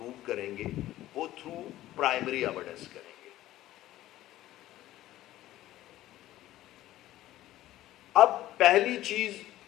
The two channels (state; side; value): quieter; right; 14.8 dB